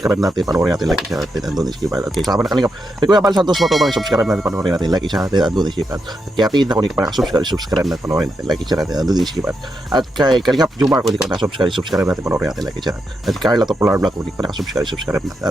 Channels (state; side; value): normal; both; correlation 0.84